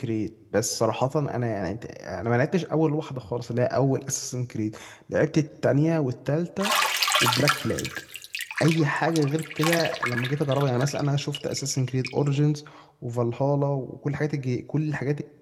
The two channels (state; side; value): identical; both; correlation 1.00